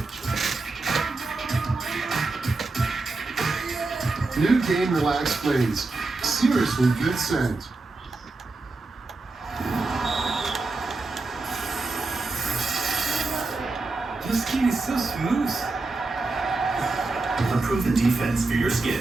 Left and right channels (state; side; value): quieter; left; 3.5 dB